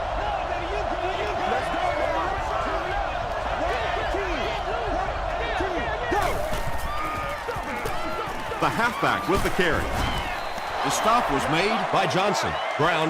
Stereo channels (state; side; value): identical; both; correlation 1.00